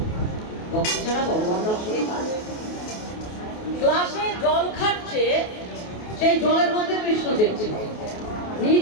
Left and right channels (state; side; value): late; right; 28 ms